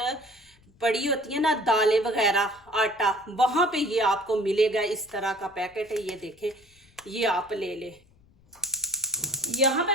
पड़ी होती है ना दालें वगैरह, आटा, वहां पे ये आपको मिलेगा। इस तरह का पैकेट है, ये देखें, ये आप ले ले। यहाँ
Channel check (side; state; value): left; noise; rumble, 30 dB below the sound